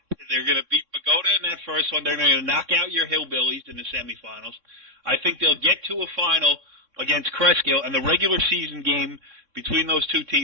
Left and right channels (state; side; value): late; left; 3.6 ms